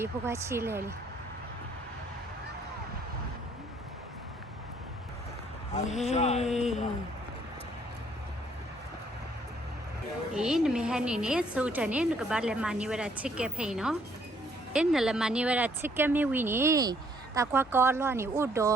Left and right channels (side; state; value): both; normal; correlation 0.66